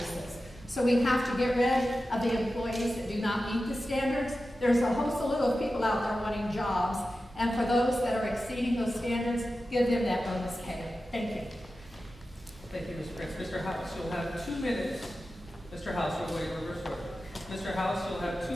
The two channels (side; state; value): both; normal; correlation 0.93